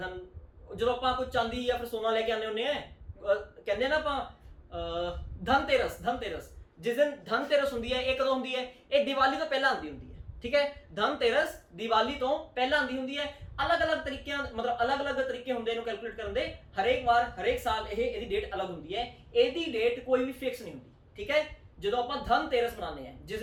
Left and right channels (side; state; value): both; identical; correlation 1.00